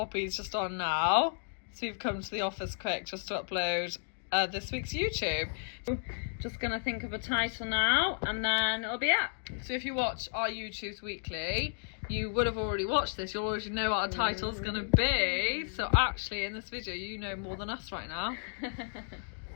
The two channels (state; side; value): silent; right; digital silence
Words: just on now. So we've come to the office quick just to upload this week's YouTube. Just gonna think of a title now and then it'll be up. So if you watch our YouTubes weekly, you would have already watched this. You'll already know what our title's gonna be. So actually in this video you know more than us right now.